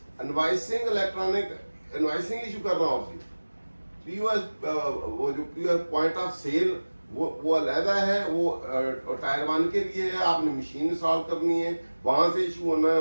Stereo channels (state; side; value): inverted; both; correlation -1.00